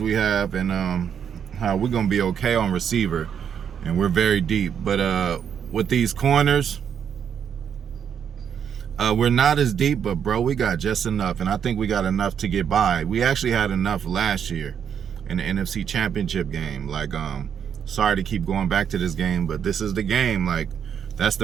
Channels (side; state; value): left; quieter; 8.0 dB